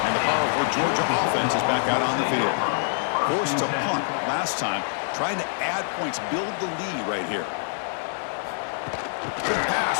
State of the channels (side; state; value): right; silent; digital silence